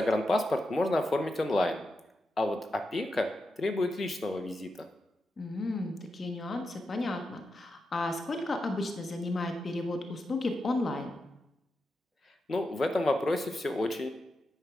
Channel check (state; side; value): normal; both; correlation 0.88